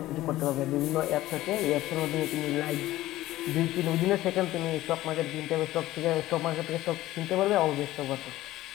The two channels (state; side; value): quieter; right; 15.9 dB